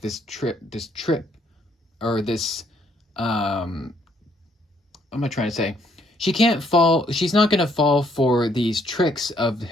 this trip, or this, what am I trying to say? She's not going to fall for these tricks of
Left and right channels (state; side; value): normal; both; correlation 0.68